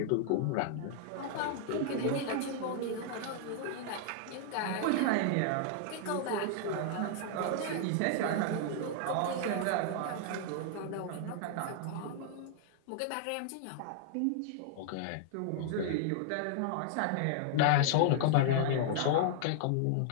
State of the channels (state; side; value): different; both; correlation -0.01